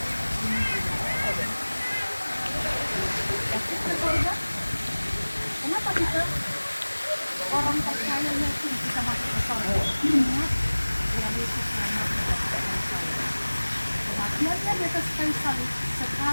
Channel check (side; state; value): both; inverted; correlation -1.00